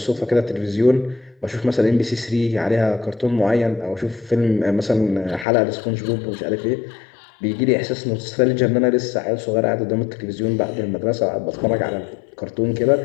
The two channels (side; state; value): right; drops out; at 5.5 s